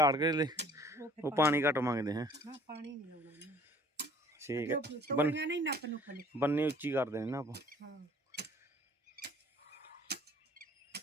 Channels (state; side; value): normal; both; correlation 0.53